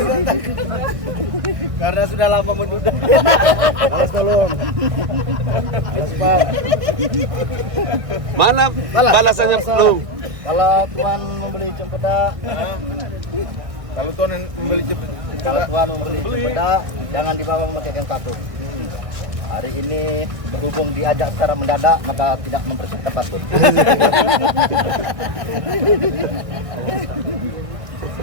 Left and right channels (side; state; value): left; late; 1.6 ms